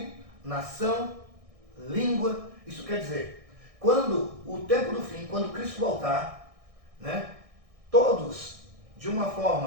nação, língua. Isso quer dizer, quando o tempo do fim, quando Cristo voltar, né, todos, de uma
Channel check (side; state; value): left; late; 1.6 ms